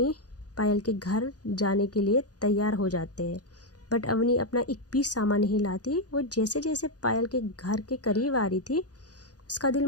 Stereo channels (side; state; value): right; late; 0.68 ms